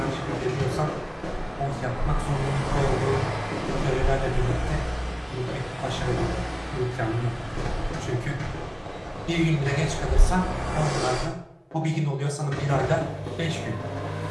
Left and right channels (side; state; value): both; identical; correlation 1.00